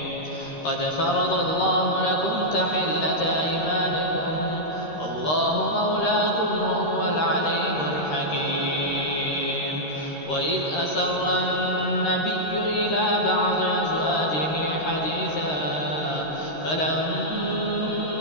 قد فرض الله لكم تحلة أيمانكم والله مولاكم وهو العليم الحكيم. وإذ أسر النبي إلى بعض أزواجه حديثا فلما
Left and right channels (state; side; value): late; right; 13 ms